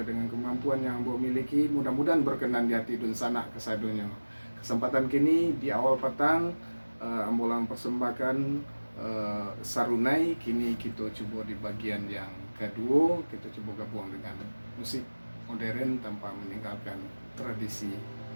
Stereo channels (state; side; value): inverted; both; correlation -1.00